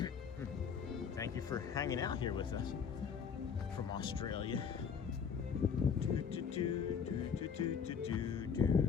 Thank you for hanging out here with us from Australia. All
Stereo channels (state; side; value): quieter; right; 6.7 dB